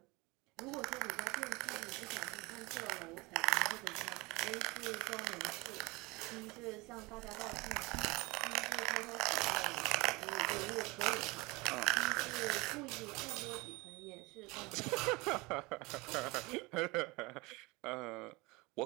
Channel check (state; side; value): quieter; left; 24.2 dB